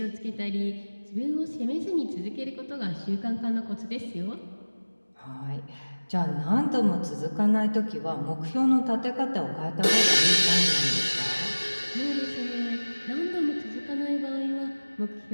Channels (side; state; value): both; inverted; correlation -1.00